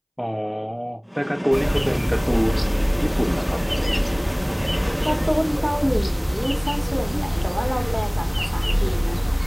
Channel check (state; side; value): identical; both; correlation 1.00